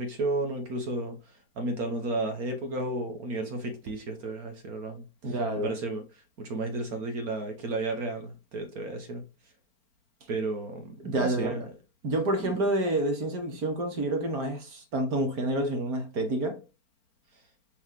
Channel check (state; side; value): late; left; 4.4 ms